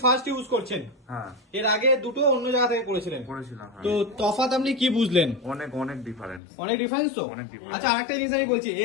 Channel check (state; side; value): drops out; right; at 6.4 s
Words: ফার্স্ট ইউজ করছেন। এর আগে দুটো অন্য জায়গা থেকে করেছিলেন। তো তফাৎ আপনি কি বুঝলেন? অনেক ডিফারেন্স। অনেক ডিফারেন্স তো। অনেক difference। আচ্ছা, আরেকটা জিনিস আমি বলছি,